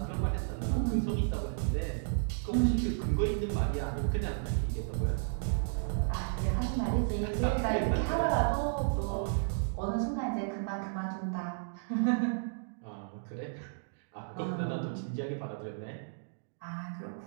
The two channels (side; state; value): left; silent; digital silence